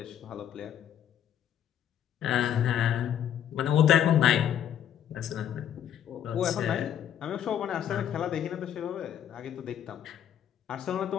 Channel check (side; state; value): right; quieter; 9.9 dB